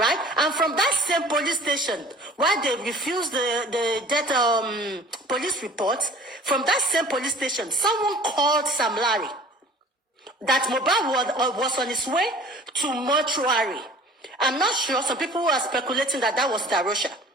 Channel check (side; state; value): both; normal; correlation 0.47